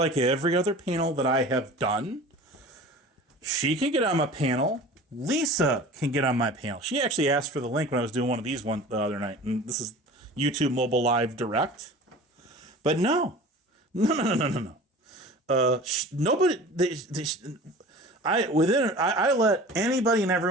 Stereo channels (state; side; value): normal; both; correlation 0.40